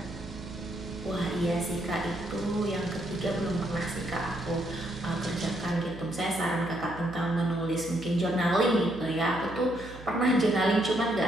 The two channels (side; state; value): right; noise; hum, 16 dB below the sound